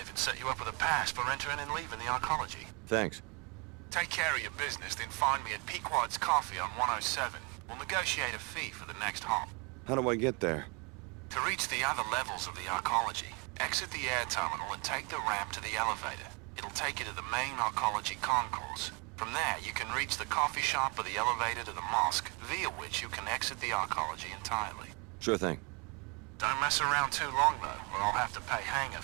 even set you up with a pass for entering and leaving the Archology. Thanks. Take care of your business, then find me at Pequod's Coffee on 107. We'll negotiate a fee for the next hop. How do I get there? To reach the other levels of the Archology, exit the air terminal and take the ramp to the elevator. It'll take you to the main Archology concourse. From there, you can reach the coffee shop or the elevator to the mosque, via which you can exit the Archology entirely. Sure thing. Don't mess around too long, though, or I'll have to pay hangar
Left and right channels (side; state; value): left; quieter; 30.5 dB